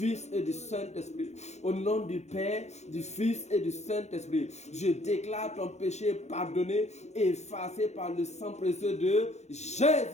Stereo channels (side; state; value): right; late; 0.32 ms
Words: et du Saint-Esprit. Au nom du Père, du Fils et du Saint-Esprit. Je déclare ton péché pardonné et effacé par le sang précieux de